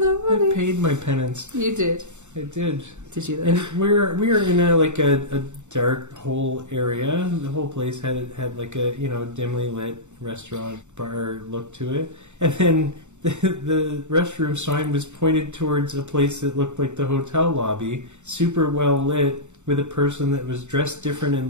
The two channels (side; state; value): left; late; 0.84 ms